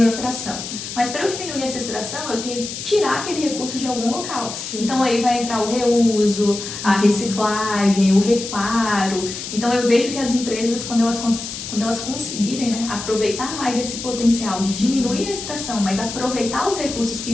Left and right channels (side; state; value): left; noise; hiss, 8 dB below the sound